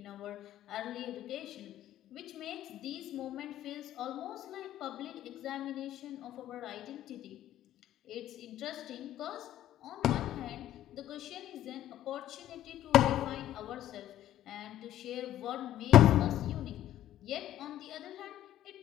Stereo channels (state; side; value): quieter; right; 12.7 dB